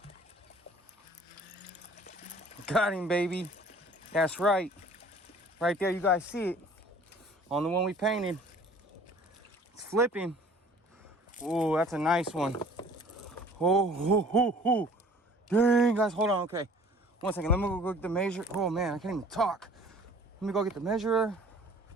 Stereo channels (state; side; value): normal; both; correlation 0.51